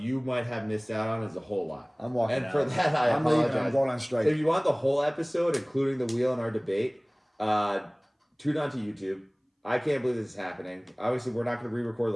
might have missed out on is a whole lot. I'm walking And out. for that, I'm leaving. apologize. I'm going on strike. If you want the whole episode, including the wheel and our debate, tune on to YouTube. I can't believe this is happening. Obviously, we're not going to re-record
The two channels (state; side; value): identical; both; correlation 1.00